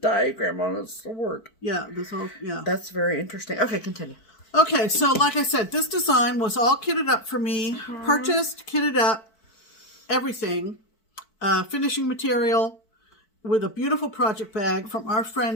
on a sword. Yeah, this whole That's very interesting. Okay, continue. Okay, so like I said, this design was all kitted up for me. Purchased, kitted up, everything. Finishing material with a beautiful project bag from our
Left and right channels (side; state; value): right; late; 4.5 ms